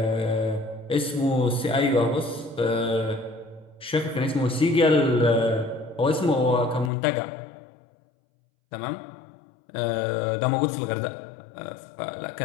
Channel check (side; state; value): right; drops out; at 6.9 s